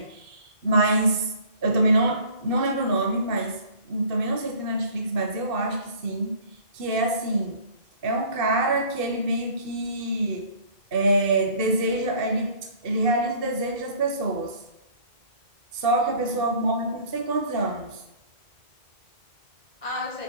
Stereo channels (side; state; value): left; late; 2.6 ms